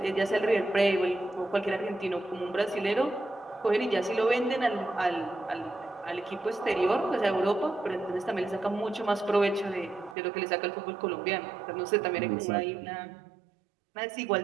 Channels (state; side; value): drops out; left; at 10.2 s